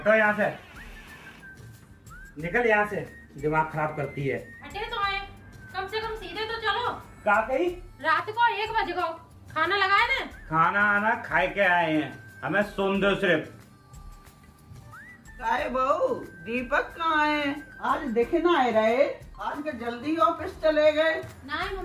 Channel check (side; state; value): both; identical; correlation 1.00